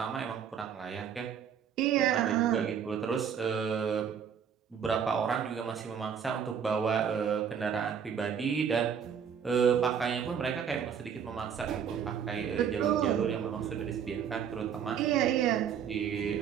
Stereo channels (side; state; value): left; quieter; 7.8 dB